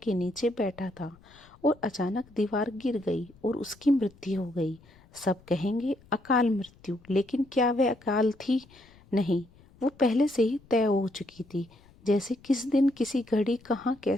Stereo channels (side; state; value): left; noise; rumble, 27 dB below the sound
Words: नीचे बैठा था और अचानक दीवार गिर गई और उसकी मृत्यु हो गई। सब कहेंगे अकाल मृत्यु, लेकिन क्या वह अकाल थी? नहीं, वो पहले से ही तय हो चुकी थी। जैसे किस दिन, किसी घड़ी, कहाँ